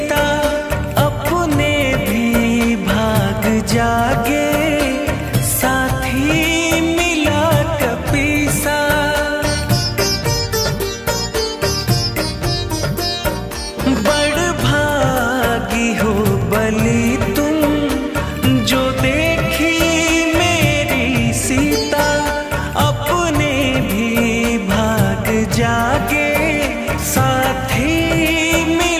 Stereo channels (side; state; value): both; identical; correlation 1.00